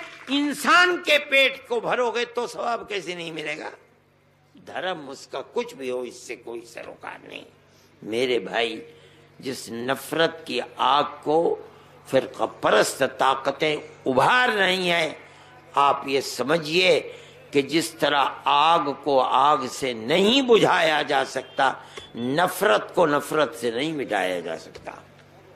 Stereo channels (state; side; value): identical; both; correlation 1.00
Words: انسان کے پیٹ کو بھرو گے تو ثواب کیسے نہیں ملے گا؟ دھرم اس کا کچھ بھی ہو، اس سے کوئی سروکار نہیں. میرے بھائی، جس نفرت کی آگ کو فرقہ پرست طاقتیں ابھار رہی ہیں، آپ یہ سمجھیے کہ جس طرح آگ کو آگ سے نہیں بجھایا جا سکتا، نفرت کو نفرت سے نہیں مٹایا جا سکتا.